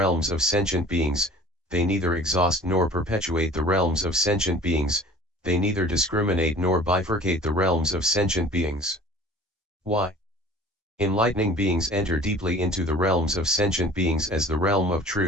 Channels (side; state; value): both; normal; correlation 0.46